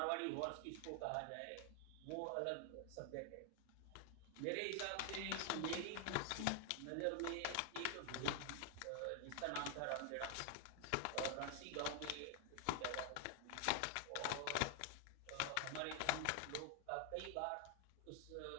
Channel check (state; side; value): different; both; correlation 0.00